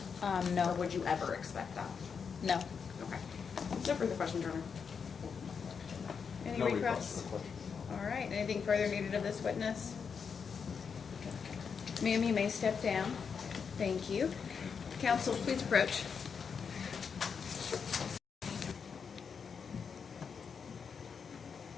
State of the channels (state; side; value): quieter; right; 6.2 dB